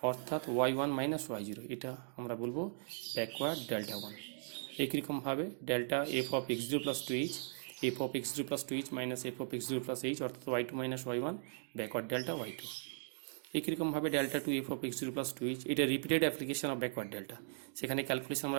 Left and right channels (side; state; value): left; silent; digital silence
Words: অর্থাৎ y1 মাইনাস y0। এটা আমরা বলবো ব্যাকওয়ার্ড ডেল্টা 1। একই রকমভাবে delta F of x0 plus 2h, F of x0 plus 2h minus F of x0 plus h, অর্থাৎ y2 minus y1, backward delta y2। একই রকমভাবে delta two F of x0 plus 2h, এটা repeated application of backward delta. সেখানে calculation